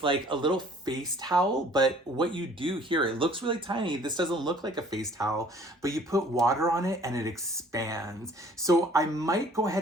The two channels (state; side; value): normal; both; correlation 0.55